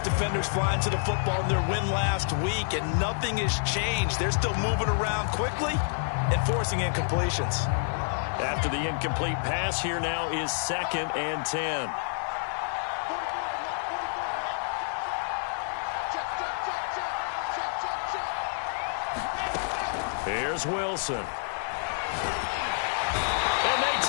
defenders flying to the football in their win last week, and nothing has changed. They're still moving around quickly and forcing incompletions. After the incomplete pass, here now is 2nd and 10. Here's Wilson. And they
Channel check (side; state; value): right; silent; 59 dB below the other